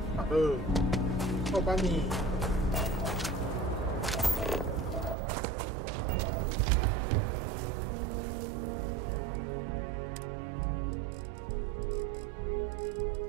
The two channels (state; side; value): drops out; left; at 5.2 s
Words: 我帮你。